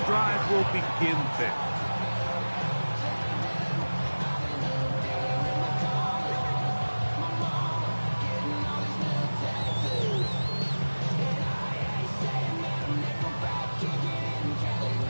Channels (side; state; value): both; inverted; correlation -1.00